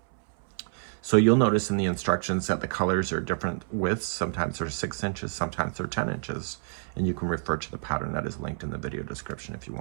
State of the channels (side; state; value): left; silent; 59 dB below the other